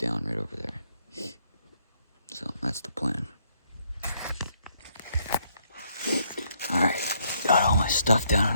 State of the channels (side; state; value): both; inverted; correlation -0.70